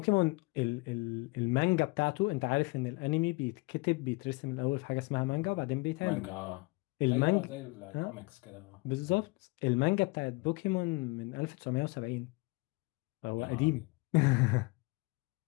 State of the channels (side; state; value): right; quieter; 25.9 dB